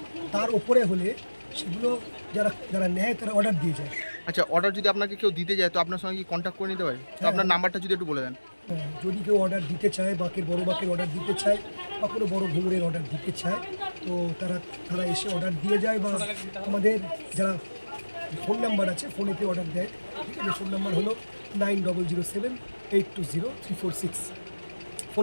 তার ওপরে হলে সেগুলো যারা নেয় তারা অর্ডার দিয়ে যায়। আচ্ছা, অর্ডার যদি আপনাকে কেউ দিতে যায় তো আপনার সঙ্গে কি কন্ট্যাক্ট করে নিতে পারে? তো আপনার নাম্বারটা যদি একটু বলে দেন। হ্যাঁ, যদি কেউ অর্ডার দিতে চায়, বড় বাঁকের অর্ডার দিতে চায় বা কোনো বড় ঘুঙুরের অর্ডার দিতে চায়, তো তারা এসে অর্ডার দিয়ে যায়। বা আমাদের যারা ফোন নাম্বার আছে, ফোনেতে অর্ডার দেয়, ঠিক আছে। ফোন নাম্বার হলো 9007820346।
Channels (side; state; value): both; inverted; correlation -1.00